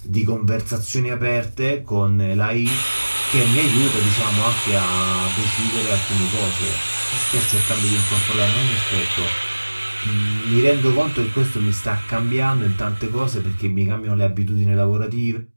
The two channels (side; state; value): both; inverted; correlation -1.00